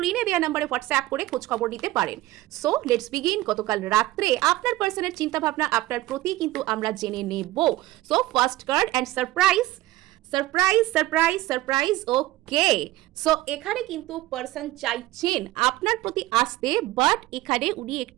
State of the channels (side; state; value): left; quieter; 17.1 dB